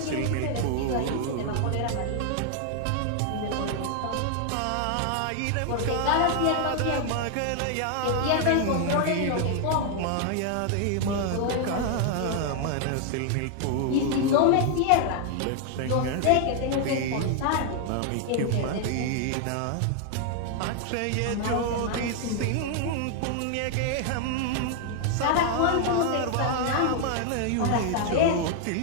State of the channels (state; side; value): different; both; correlation 0.00